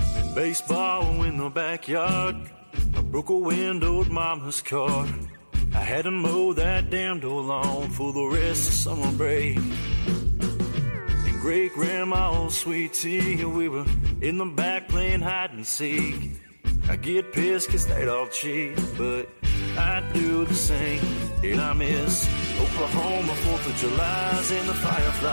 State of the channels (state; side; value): inverted; both; correlation -1.00